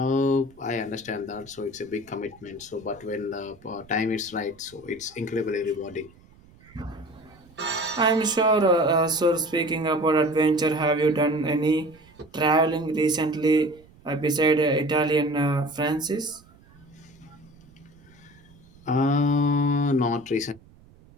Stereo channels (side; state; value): right; noise; rumble, 26 dB below the sound